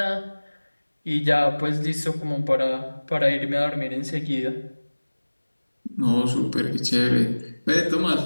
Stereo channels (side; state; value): both; inverted; correlation -1.00